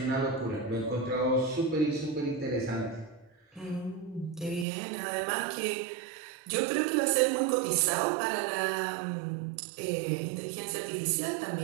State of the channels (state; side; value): drops out; left; at 4.7 s